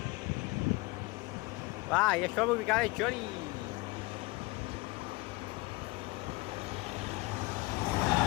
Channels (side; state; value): right; quieter; 23.1 dB